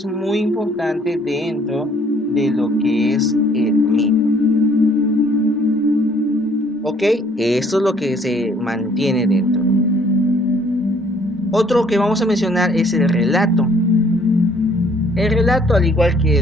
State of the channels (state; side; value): normal; both; correlation 0.61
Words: muy importante dentro de lo que es el mito. ¿Ok? Esto es lo que se mantiene dentro. Otro que vamos a mencionar es el relato. El relato, al igual que